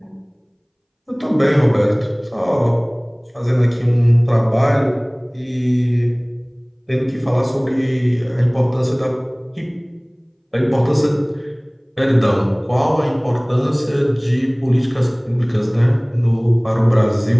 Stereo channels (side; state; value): both; identical; correlation 1.00